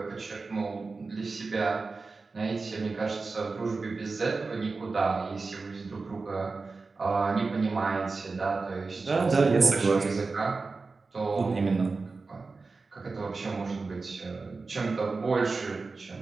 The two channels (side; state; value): left; quieter; 4.0 dB